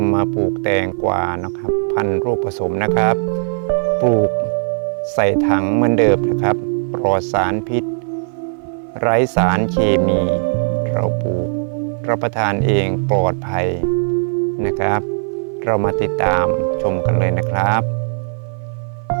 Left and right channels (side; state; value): left; silent; 56 dB below the other